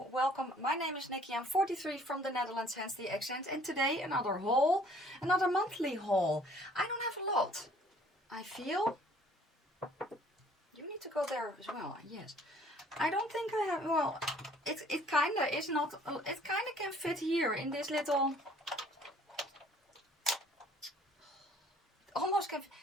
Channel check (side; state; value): both; normal; correlation 0.57